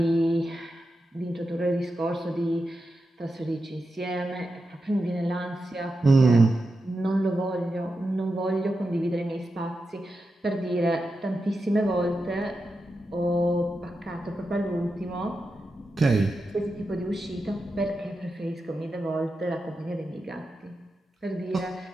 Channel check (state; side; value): normal; both; correlation 0.89